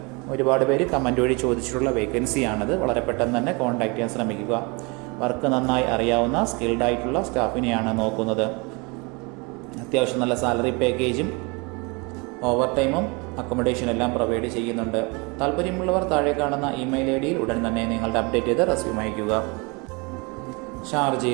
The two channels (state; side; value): quieter; left; 29.0 dB